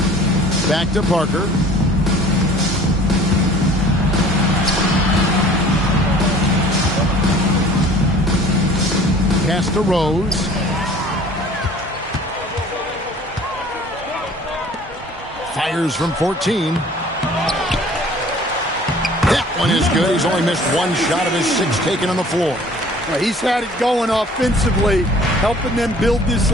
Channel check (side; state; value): both; normal; correlation 0.50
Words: Back to Parker. Pass to Rose. Fires from 14. That one is good. He's only missed one shot of his 6 taken on the floor. Well, he's had it going offensively, helping them build this